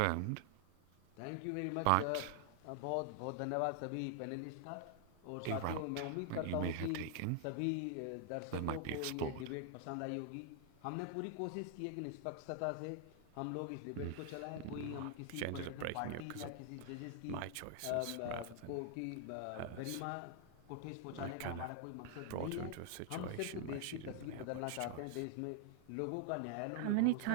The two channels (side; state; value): both; different; correlation 0.00